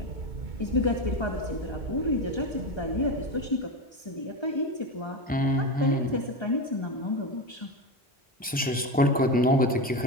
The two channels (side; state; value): both; normal; correlation 0.18